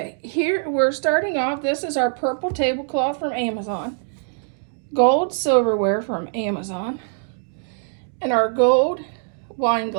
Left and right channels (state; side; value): silent; left; 64 dB below the other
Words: here we're starting off. This is our purple tablecloth from Amazon, gold silverware from Amazon, and our gold wine